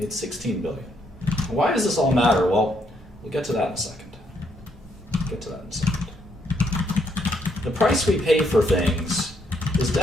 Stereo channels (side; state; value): both; normal; correlation 0.74